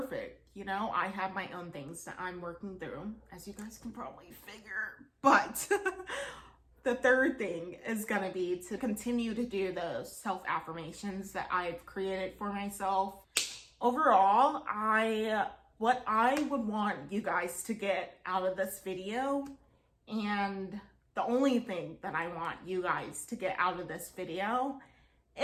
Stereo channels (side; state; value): both; identical; correlation 1.00